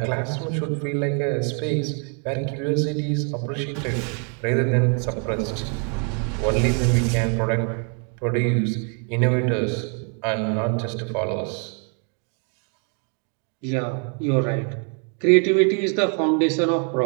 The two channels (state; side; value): quieter; left; 39.8 dB